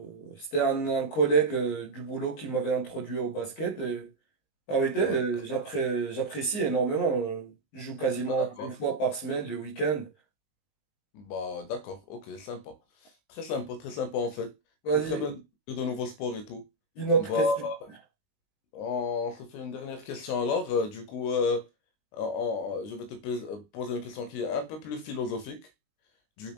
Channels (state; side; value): late; right; 19 ms